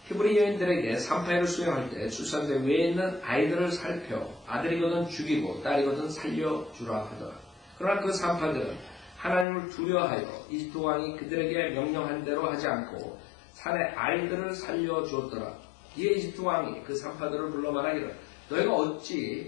히브리 여인들에게 산파를 수용할 때 출산대 위에 있는 아이들을 살펴 아들이거든 죽이고 딸이거든 살려주라 하더라. 그러나 그 산파들은 하나님을 두려워하여 이집트 왕이 그들에게 명령한 대로 하지 않고 산의 아이들을 살려주었더라. 이에 이집트 왕이 그 산파들을 불러 말하기를 너희가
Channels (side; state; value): right; drops out; at 9.5 s